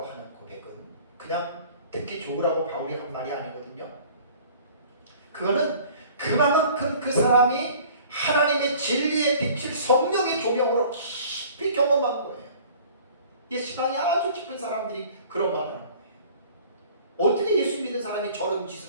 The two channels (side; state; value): both; inverted; correlation -0.49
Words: 하는 고백은 그냥 듣기 좋으라고 바울이 한 말이 아니거든요. 그거는 그만큼 그 사람이 하나님의 진리의 빛을 성령의 조명으로 깊이 경험한 거예요. 이 시간이 아주 깊은 사람들이 그런 말을 하는 거예요. 어떻게 예수 믿는 사람이 저런